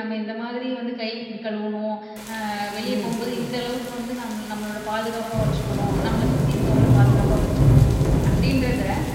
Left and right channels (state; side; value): identical; both; correlation 1.00